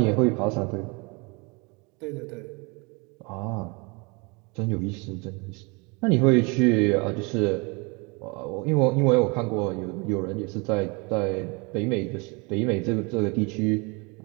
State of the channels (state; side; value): quieter; left; 29.5 dB